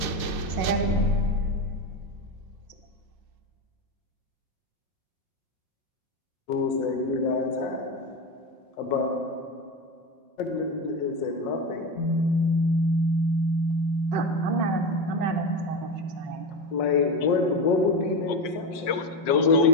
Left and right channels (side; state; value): right; late; 5.6 ms